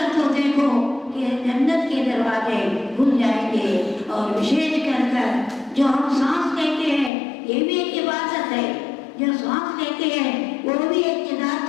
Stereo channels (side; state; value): right; drops out; at 7.1 s